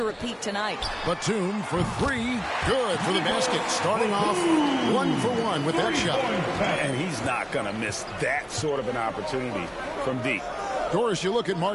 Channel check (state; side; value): identical; both; correlation 1.00